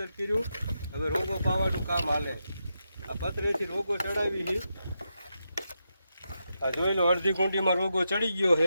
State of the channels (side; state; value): both; inverted; correlation -0.86